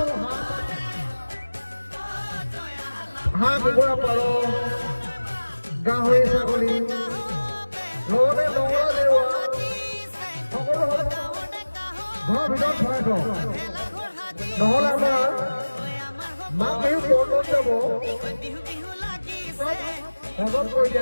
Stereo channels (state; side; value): inverted; both; correlation -1.00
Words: হাঁহ কুকুৰা পাৰ গাহৰি ছাগলী লগতে নগৰ জেওৰা সকলো ঘৰৰ ভিতৰত ভৰাই থওঁ নহ'লে আমাৰ মাঘ বিহু পৰ্বত যাব সহজ কৰি